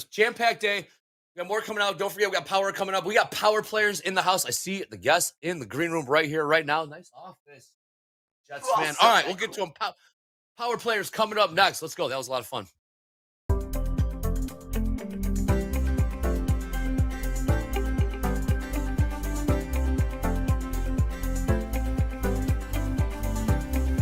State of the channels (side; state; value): both; identical; correlation 1.00